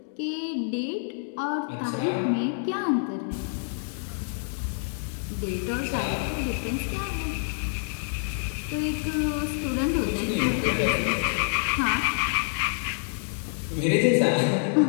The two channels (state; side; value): silent; right; digital silence